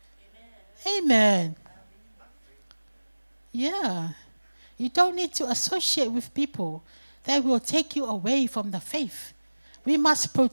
Amen. Yeah. You don't need to associate with people that will take you away from the faith. We must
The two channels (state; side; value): inverted; both; correlation -1.00